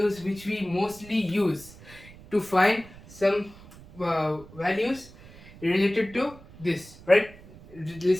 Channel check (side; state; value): right; noise; rumble, 20 dB below the sound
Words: which we mostly use to find some values related to this, right?